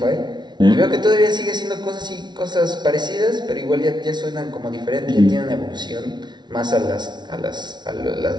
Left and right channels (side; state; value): left; late; 0.20 ms